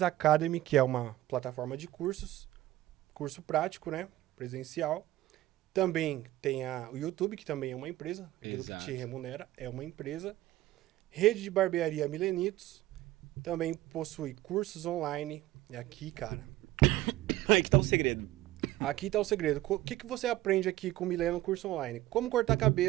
Academy, que é uma plataforma de curso prático, né? Presencial. Também tem o YouTube, que também é uma empresa, aquilo que te remunera é uma empresa. Rede de barbearia Milenitos, também possui cursos online. E aqui, cara... Aí que tá o segredo. Aqui tá o segredo. O que você aprende aqui com o Mileno no curso online? Como cortar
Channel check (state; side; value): quieter; left; 15.8 dB